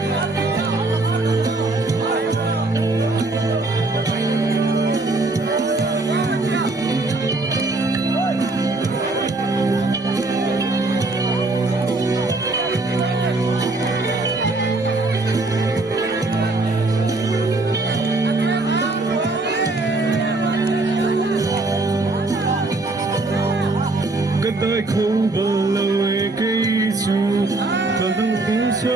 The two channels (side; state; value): left; quieter; 3.1 dB